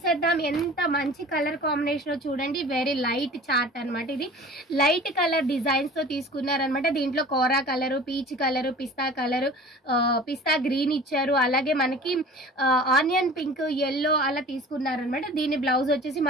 ఎంత మంచి కలర్ కాంబినేషన్ చూడండి, వెరీ లైట్ చార్ట్ అనమాట. ఇది లైట్ కలర్ డిజైన్స్తో తీసుకున్నారనమాట. దీంట్లో కోరా కలరు, పీచ్ కలరు, పిస్తా గ్రీన్ ఇచ్చారు. అలాగే మనకి ఆనియన్ పింక్, ఎల్లో అలా తీసుకున్నారనమాట. దీని బ్లౌజ్ వచ్చేసి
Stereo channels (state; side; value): normal; both; correlation 0.42